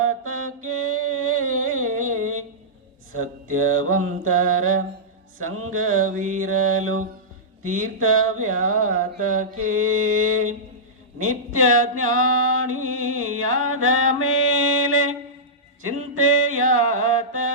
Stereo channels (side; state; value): both; normal; correlation -0.15